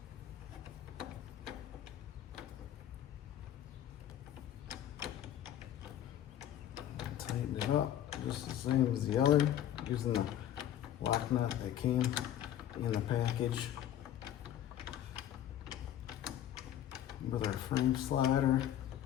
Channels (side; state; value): right; quieter; 11.3 dB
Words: Tighten it up just the same as the other, using the lock nut that came in the package with our frame slider.